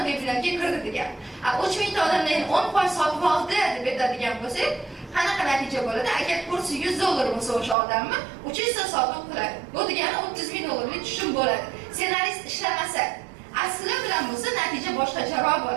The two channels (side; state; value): left; drops out; at 7.8 s